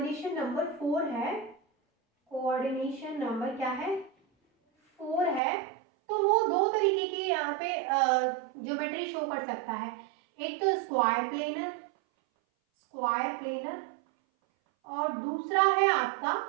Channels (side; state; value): left; drops out; at 5.4 s